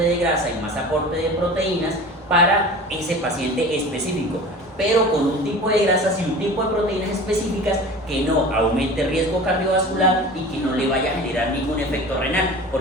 de grasa y más aporte de proteínas para ese paciente específico, pero con un tipo de grasas y un tipo de proteínas específicas que no aumente riesgo cardiovascular y que no le vaya a generar ningún efecto renal,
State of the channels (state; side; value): normal; both; correlation 0.37